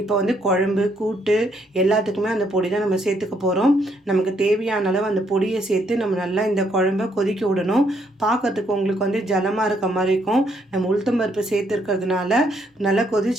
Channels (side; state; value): both; normal; correlation 0.72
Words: குழம்பு, கூட்டு எல்லாத்துக்குமே அந்த பொடி தான் நம்ம சேர்த்துக்க போகிறோம். நமக்கு தேவையான அளவு அந்த பொடியை சேர்த்து நம்ம நல்லா இந்த குழம்பை கொதிக்க விடணும். பார்க்கறதுக்கு உங்களுக்கு ஜலமாக இருக்க மாதிரி இருக்கும். நம்ம உளுத்தம்பருப்பு சேர்த்துருக்கிறதுனால நல்லா